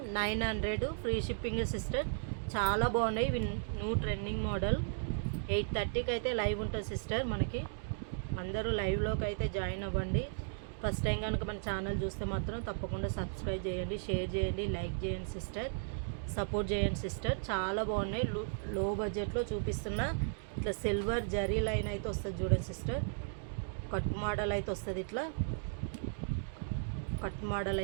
900 ఫ్రీ షిప్పింగే సిస్టర్. చాలా బాగున్నాయి. ఇవి న్యూ ట్రెండింగ్ మోడల్. 8:30కి అయితే లైవ్ ఉంటుంది సిస్టర్ మనకి. అందరూ లైవ్లోకి అయితే జాయిన్ అవ్వండి. ఫస్ట్ టైం కనుక మన ఛానల్ చూస్తే మాత్రం తప్పకుండా సబ్స్క్రైబ్ చేయండి, షేర్ చేయండి, లైక్ చేయండి సిస్టర్, సపోర్ట్ చేయండి సిస్టర్. చాలా బాగున్నాయి. లో బడ్జెట్లో చూపిస్తున్న ఇట్లా సిల్వర్ జరీ లైన్ అయితే వస్తుంది చూడండి సిస్టర్. కట్ మోడల్ అయితే వస్తుంది, ఇట్లా కట్ మోడల్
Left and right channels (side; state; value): left; silent; digital silence